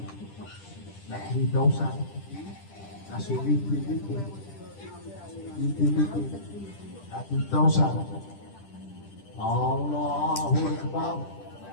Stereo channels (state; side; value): late; right; 10 ms